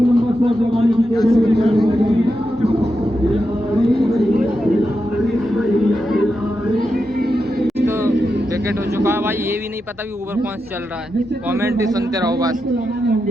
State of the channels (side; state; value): both; normal; correlation 0.87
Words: लंबा शॉट लगाने की कोशिश विकेट हो चुका है भाई। ये भी नहीं पता भी ओवर कौन चल रहा है, कमेंट ही सुनते रहो बस।